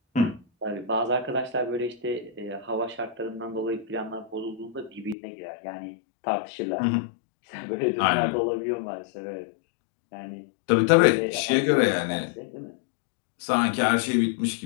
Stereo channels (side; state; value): right; drops out; at 5.2 s